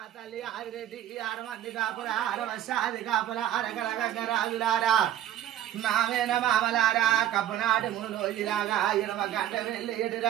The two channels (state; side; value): quieter; left; 11.7 dB